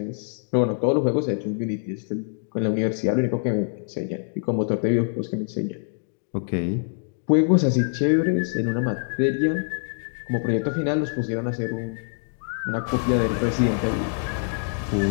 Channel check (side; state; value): right; silent; 62 dB below the other